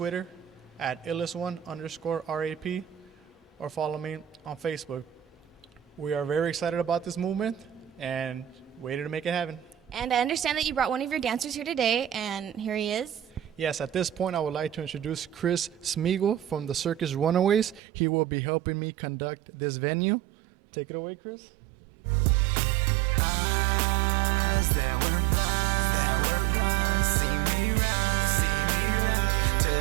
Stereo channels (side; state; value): left; drops out; at 17.8 s